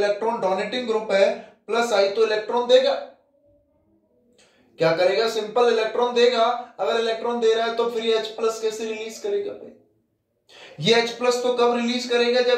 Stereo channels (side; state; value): both; identical; correlation 1.00